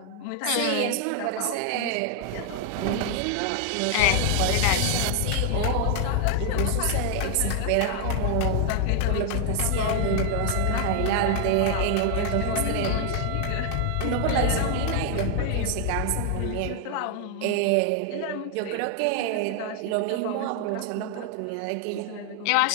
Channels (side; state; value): both; different; correlation 0.00